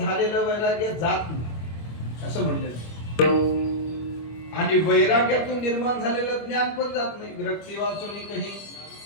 वैराग्य जात नाही असं म्हणलेलं. आणि वैराग्यातून निर्माण झालेलं ज्ञान पण जात नाही. विरक्ती वाचून काही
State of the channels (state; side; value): late; right; 25 ms